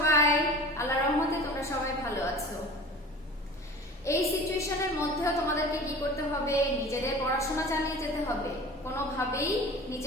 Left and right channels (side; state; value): both; normal; correlation 0.39